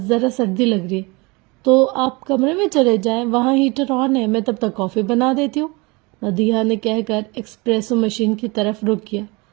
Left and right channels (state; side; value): quieter; left; 26.3 dB